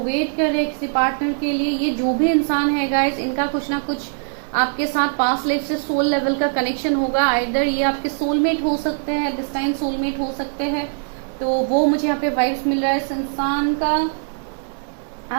कर रहे हैं किसी पार्टनर के लिए। ये जो भी इंसान है गाइज, इनका कुछ ना कुछ आपके साथ पास्ट लाइफ से सोल लेवल का कनेक्शन होगा। आइदर ये आपके सोलमेट हो सकते हैं, दिस टाइम सोलमेट हो सकते हैं। तो वो मुझे यहाँ पे वाइब्स मिल रहा है। इस इंसान का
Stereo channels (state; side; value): silent; left; digital silence